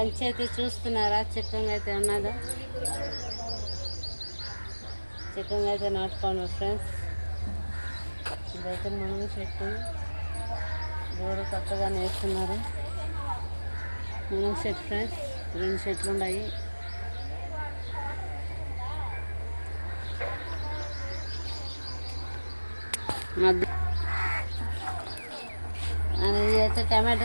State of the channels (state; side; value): inverted; both; correlation -1.00